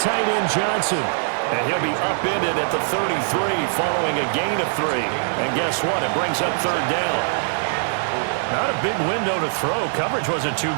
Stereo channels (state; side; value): silent; left; digital silence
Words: end, Johnson. And he'll be upended at the 33 following a gain of 3. And guess what? It brings up 3rd down. Not a big window to throw. Coverage wasn't too